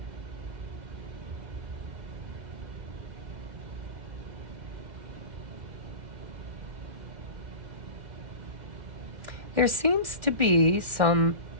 There seems to be some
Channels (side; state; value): left; late; 2.1 ms